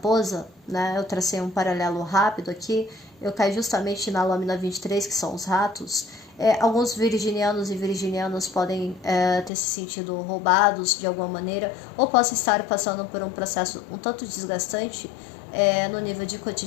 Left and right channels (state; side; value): drops out; right; at 9.5 s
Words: né, eu tracei um paralelo rápido aqui, eu caí justamente na lâmina 23, que são os ratos. Alguns virginianos e virginianas podem ter se sentido roubados de alguma maneira, ou possam estar passando por um processo um tanto desgastante no nível de